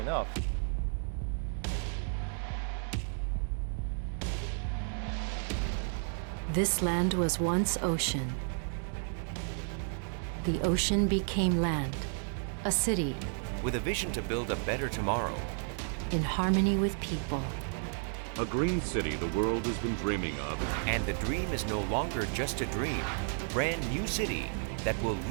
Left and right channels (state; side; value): silent; left; 56 dB below the other